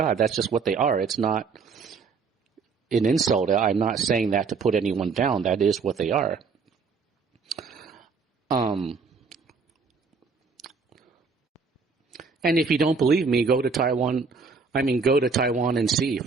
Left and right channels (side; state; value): left; quieter; 5.0 dB